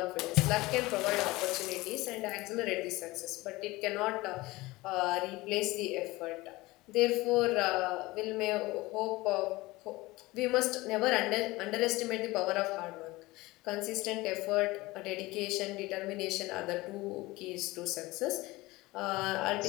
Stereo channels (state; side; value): quieter; right; 20.5 dB